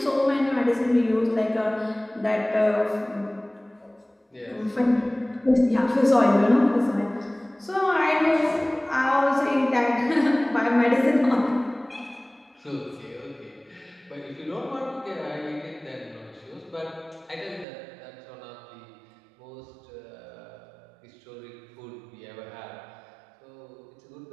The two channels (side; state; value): left; drops out; at 17.7 s